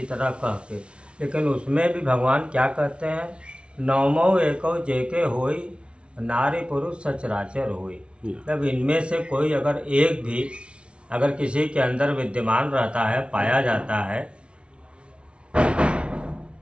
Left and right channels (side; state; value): left; late; 0.059 ms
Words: तरह कह के, लेकिन उसमें भी भगवान क्या कहते हैं, नवमो एको जेके होई, नारी पुरुष सचराचर होई। जब इनमें से कोई अगर एक भी अगर किसी के अंदर विद्यमान रहता है, पाया जाता है,